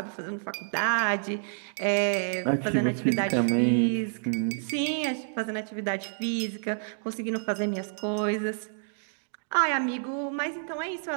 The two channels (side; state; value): left; silent; digital silence